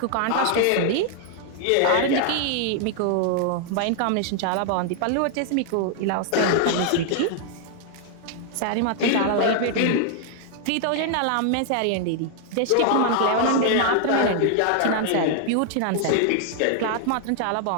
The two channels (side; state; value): both; different; correlation 0.00